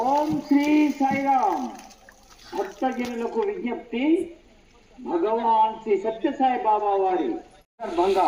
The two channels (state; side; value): identical; both; correlation 1.00